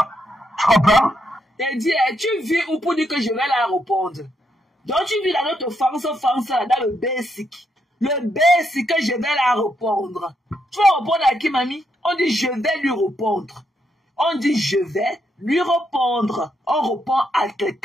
tu comprends? Elle dit, tu vis où pour dire que je vais la répondre? Donc tu vis dans notre France, dans le basic. Le basic que je vais la répondre. Tu vas répondre à qui, mamie? On dit, je vais lui répondre. On dit, je vais lui répondre. On répond à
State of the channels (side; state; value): both; normal; correlation 0.78